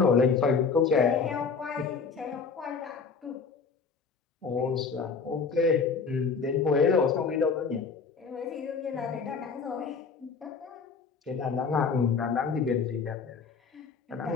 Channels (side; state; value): right; quieter; 5.3 dB